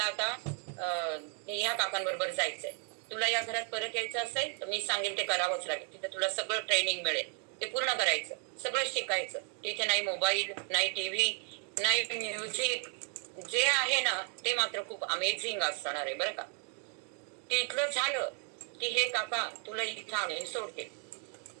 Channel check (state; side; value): quieter; left; 36.8 dB